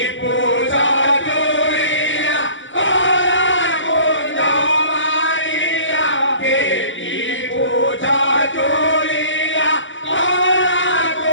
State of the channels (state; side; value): late; right; 0.55 ms